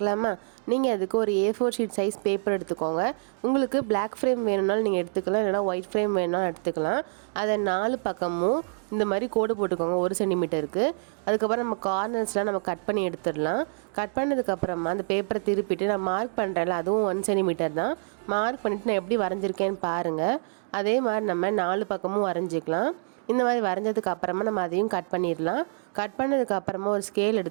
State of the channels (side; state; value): left; silent; digital silence